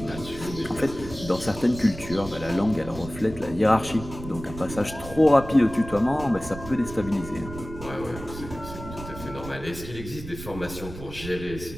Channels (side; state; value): right; noise; rumble, 12 dB below the sound